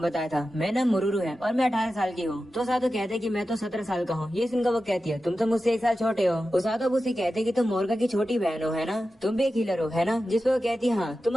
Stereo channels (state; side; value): normal; both; correlation 0.93